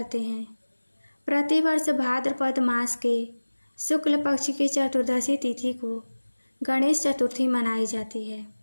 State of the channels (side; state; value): both; inverted; correlation -1.00